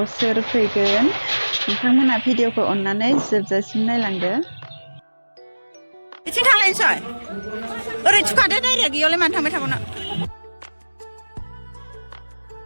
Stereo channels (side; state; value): both; inverted; correlation -1.00